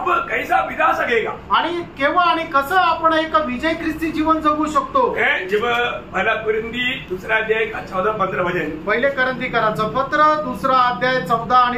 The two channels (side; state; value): both; identical; correlation 1.00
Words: कैसा बिता सकेगा, आणि केव्हा आणि कसं आपण एक विजय ख्रिस्ती जीवन जगू शकतो? जब पहला कुरिन्थी 2 अध्याय का 14-15 वचन, पहिले करंथीकराचं पत्र 2 अध्याय 14 आणि